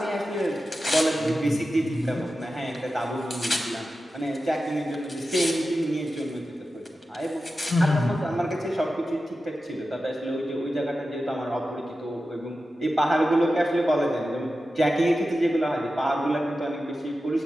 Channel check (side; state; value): both; normal; correlation 0.92